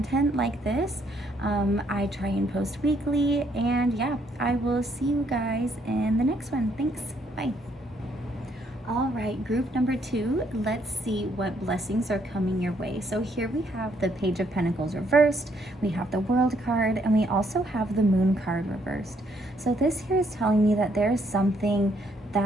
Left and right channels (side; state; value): both; normal; correlation 0.70